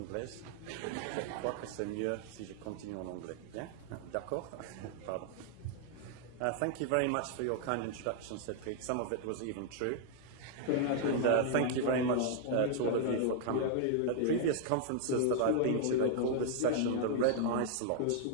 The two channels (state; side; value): different; both; correlation -0.01